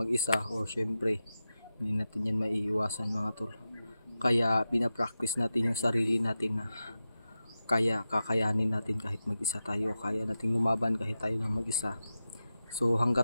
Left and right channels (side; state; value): both; inverted; correlation -0.91